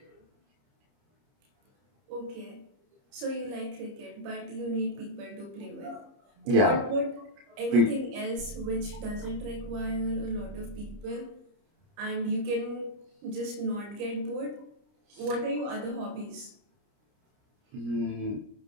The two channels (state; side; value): late; left; 30 ms